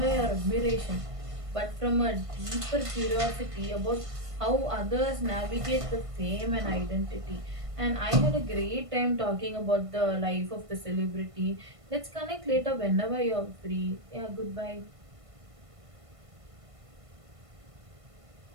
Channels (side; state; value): left; late; 1.5 ms